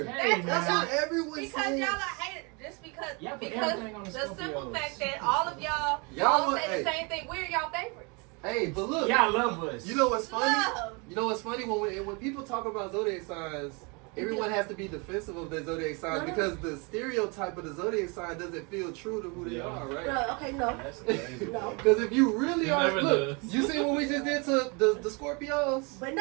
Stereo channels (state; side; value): quieter; left; 30.9 dB